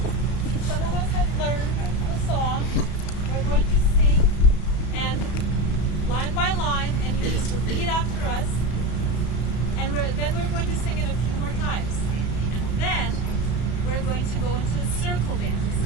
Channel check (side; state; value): right; late; 34 ms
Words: some of us have learned the song. We're going to sing, and line by line, and you just repeat after us. And then we're going to sing it a few more times. And then we're going to go into a circle dance.